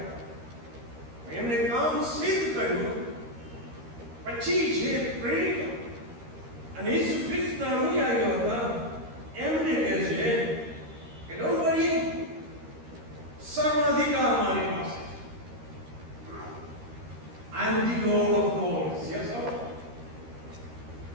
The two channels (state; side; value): late; left; 13 ms